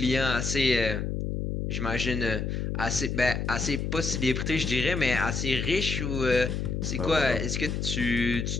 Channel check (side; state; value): left; noise; hum, 2 dB below the sound